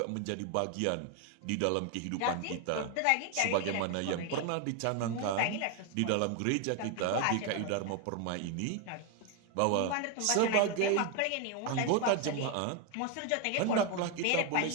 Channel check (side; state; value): both; different; correlation 0.01